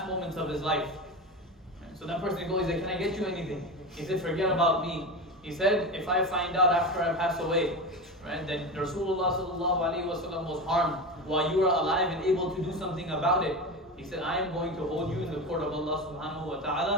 moments of his life. Right? So that person goes, he said, can I get you anything? He said, forget about me. He said, if I find out after I pass away, right, that Rasulullah sallallahu alaihi wasallam was harmed while you are alive and able to do something about it, he said, I am going to hold you in the court of Allah subhanahu wa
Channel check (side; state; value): both; normal; correlation 0.23